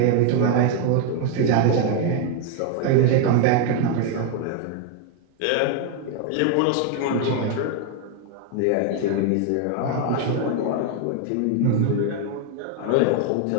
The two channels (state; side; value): different; both; correlation 0.01